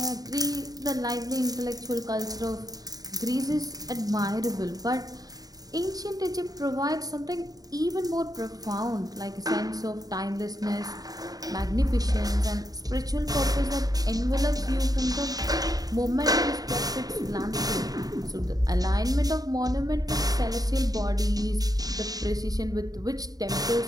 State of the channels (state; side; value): late; left; 0.18 ms